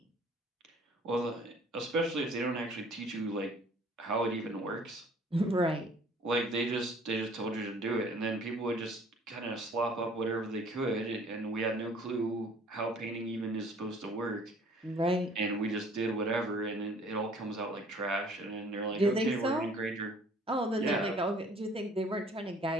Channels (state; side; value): normal; both; correlation 0.54